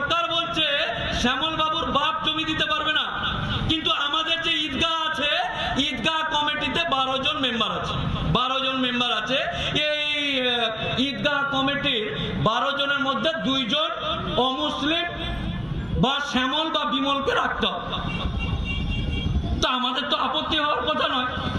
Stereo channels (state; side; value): identical; both; correlation 1.00